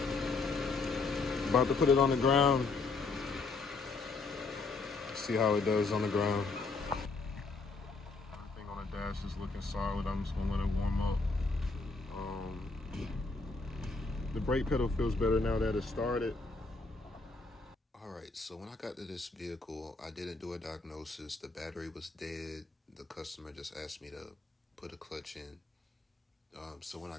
About to put it on the ground. See how it does on the ground. Everything on the dash is looking solid. I'm just gonna let it warm up. The brake pedal feels better now that it started. All right, so when I got to this vehicle, I didn't do a diagnosis. The battery was dead. The customer just asked me to put a clutch in. So when I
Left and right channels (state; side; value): quieter; right; 3.9 dB